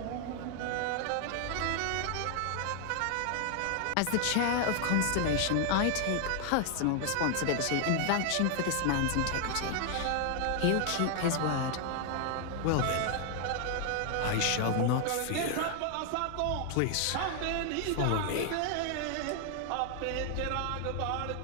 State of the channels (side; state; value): both; different; correlation 0.00